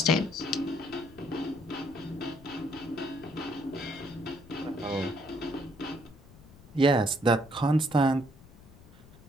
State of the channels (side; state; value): left; noise; rumble, 21 dB below the sound